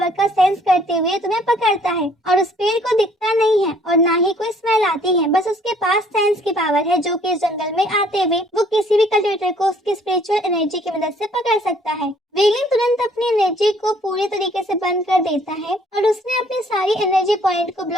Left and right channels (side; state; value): both; normal; correlation 0.60